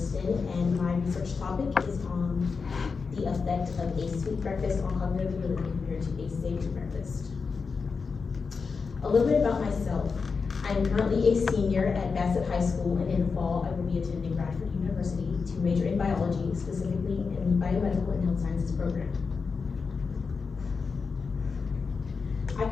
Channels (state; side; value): quieter; right; 5.0 dB